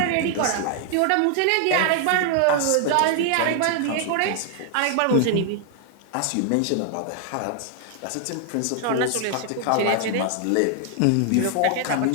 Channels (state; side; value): different; both; correlation 0.00